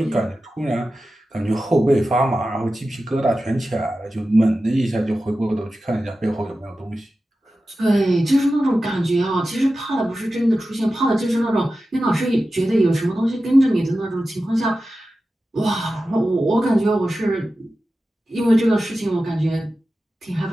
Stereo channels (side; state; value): both; normal; correlation 0.93